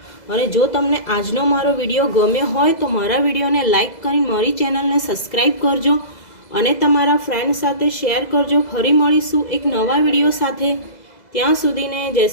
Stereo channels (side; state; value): right; late; 2.0 ms